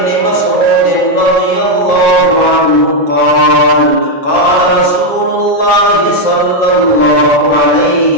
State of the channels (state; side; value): late; right; 7.4 ms